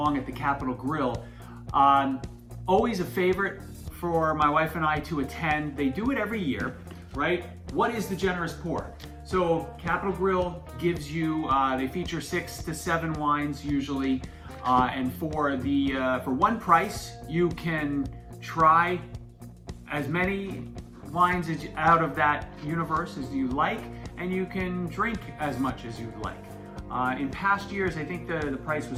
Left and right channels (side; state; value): both; identical; correlation 1.00